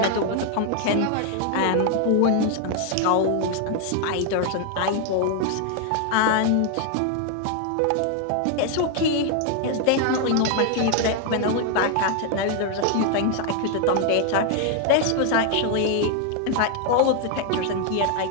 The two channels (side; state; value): both; different; correlation 0.00